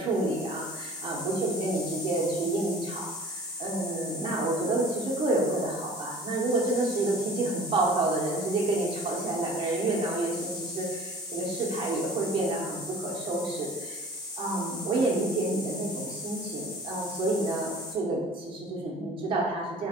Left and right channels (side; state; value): both; normal; correlation 0.45